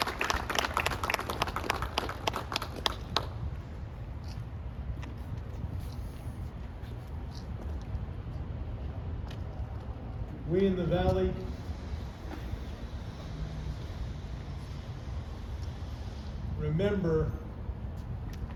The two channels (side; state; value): both; identical; correlation 1.00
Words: We in the Valley remember